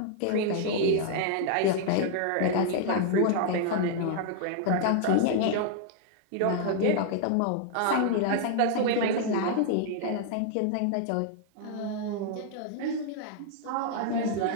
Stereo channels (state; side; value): different; both; correlation 0.00